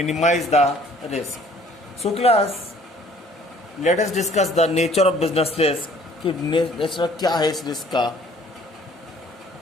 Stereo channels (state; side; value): normal; both; correlation 0.56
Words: minimize the risk. So class, let us discuss the nature of business risk. कि nature क्या है इस risk का.